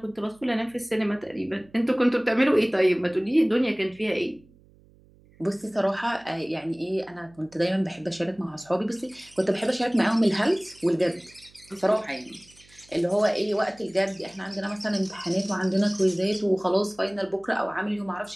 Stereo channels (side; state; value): right; noise; hum, 28 dB below the sound